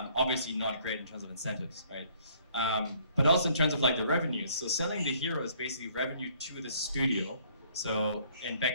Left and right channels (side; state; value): both; inverted; correlation -0.61